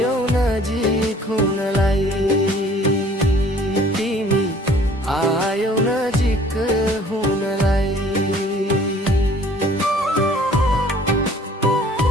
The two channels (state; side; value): normal; both; correlation 0.54